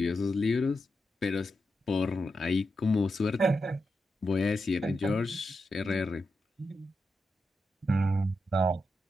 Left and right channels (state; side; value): normal; both; correlation 0.86